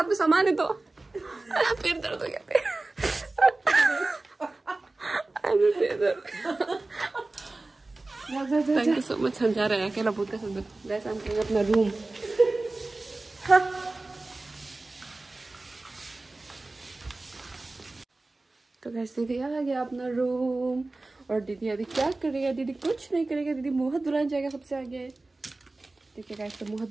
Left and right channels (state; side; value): quieter; left; 3.1 dB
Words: में सामान है तो फिर दर्द हो गया। Thank you so much. हम जा रहे हैं अकेला भूत का साथ। गाइस हम करेंगे अपना रूम। तो गाइस दीदी आ गया अपना रूम और दीदी अभी क्या करेगा? दीदी कुछ नहीं करेगा, दीदी मुँह दुल्हन जाएगा सबसे आगे। ठीक है गाइस, तो मुँह